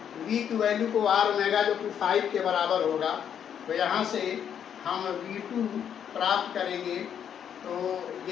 v की वैल्यू को आर ओमेगा जो कि 5 के बराबर होगा, तो यहाँ से हम v2 प्राप्त करेंगे। तो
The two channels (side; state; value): right; quieter; 8.7 dB